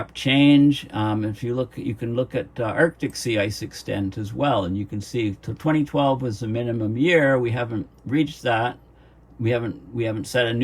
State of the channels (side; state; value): both; identical; correlation 1.00